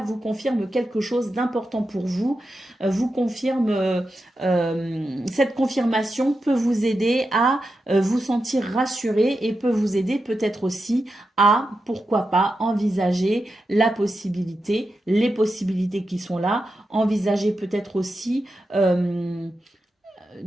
vous confirme quelque chose d'important pour vous. Vous confirme, cette confirmation peut vous aider à vous sentir rassuré et peut vous aider peut-être aussi à, pourquoi pas, envisager la possibilité, les possibilités qui sont là. Envisager peut-être aussi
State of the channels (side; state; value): both; normal; correlation 0.89